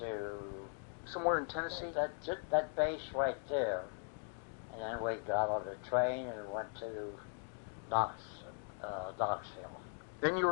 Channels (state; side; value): silent; right; 51 dB below the other